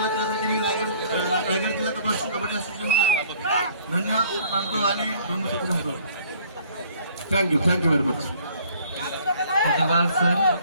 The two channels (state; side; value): inverted; both; correlation -0.57